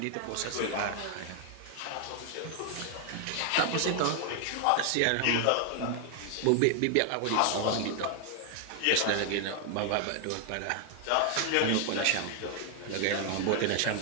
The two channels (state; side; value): different; both; correlation 0.00